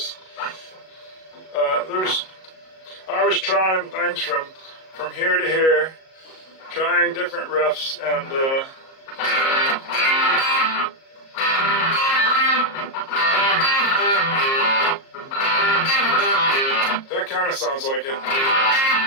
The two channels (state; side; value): late; right; 37 ms